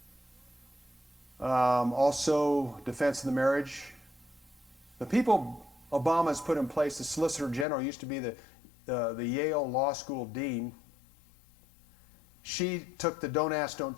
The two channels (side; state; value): right; drops out; at 7.7 s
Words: Also, defense of the marriage. The people Obama's put in place, the Solicitor General, used to be the Yale Law School dean. She took the Don't Ask,